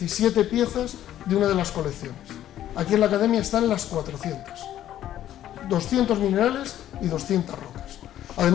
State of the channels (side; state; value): right; quieter; 12.1 dB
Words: piezas de una de las colecciones. Aquí en la Academia están las 400. 200 minerales y 200 rocas.